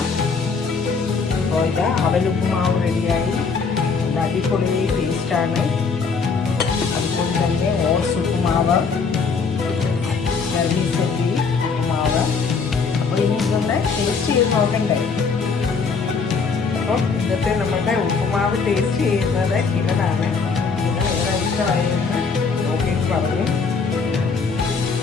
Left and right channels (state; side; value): quieter; right; 5.0 dB